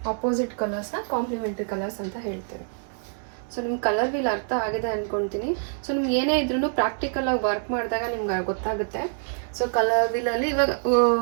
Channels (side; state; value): left; silent; digital silence